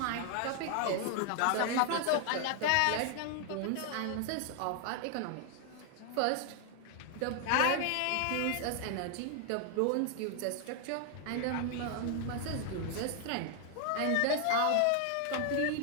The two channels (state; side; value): different; both; correlation 0.00